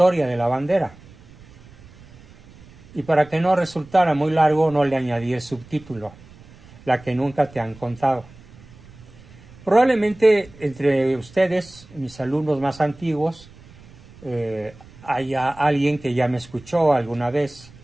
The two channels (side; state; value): right; noise; rumble, 23 dB below the sound